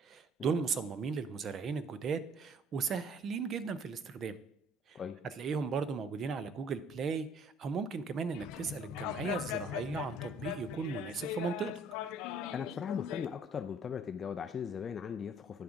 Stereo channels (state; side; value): normal; both; correlation 0.58